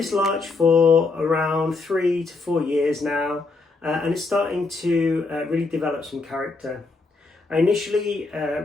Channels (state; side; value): quieter; right; 3.8 dB